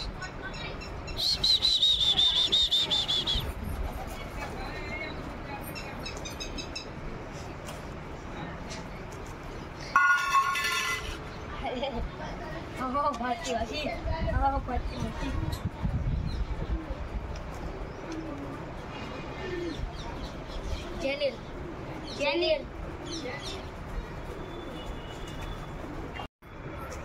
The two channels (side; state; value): both; identical; correlation 1.00